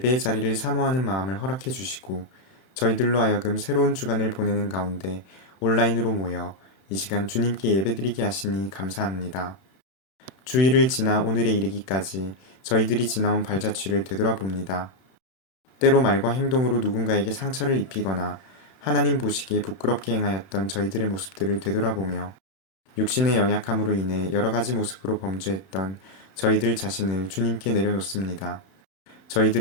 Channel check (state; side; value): late; right; 31 ms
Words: 자리를 사모하는 마음을 허락해 주시고 저희들로 하여금 새로운 주간을 보내는 가운데 온라인으로 모여 이 시간 주님께 예배드리게 하시니 감사합니다. 주일을 지나 오늘에 이르기까지 저희들이 지나온 발자취를 되돌아봅니다. 때로 말과 행동으로 누군가에게 상처를 입히거나 하나님 보시기에 부끄럽게 행하였던 저희들의 모습들을 되돌아보며 육신의 연약함으로 인해 여러 가지 모습으로 범죄했던 저희들 자신을 주님께 내려놓습니다.